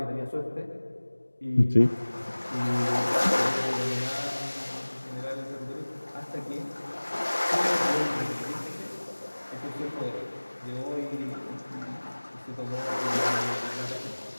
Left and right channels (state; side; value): inverted; both; correlation -1.00